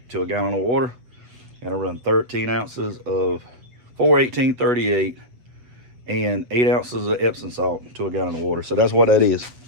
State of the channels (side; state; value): left; late; 7.8 ms